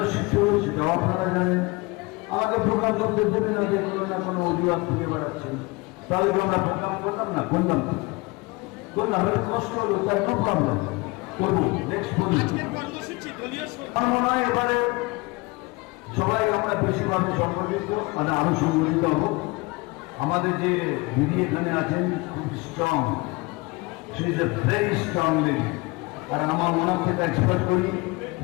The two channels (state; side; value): quieter; right; 25.0 dB